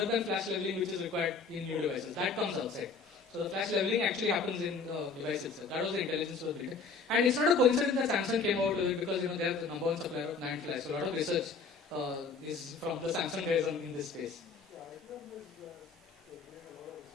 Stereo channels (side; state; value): right; quieter; 4.6 dB